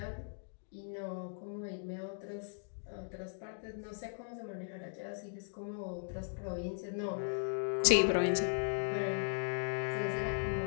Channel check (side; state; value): right; silent; digital silence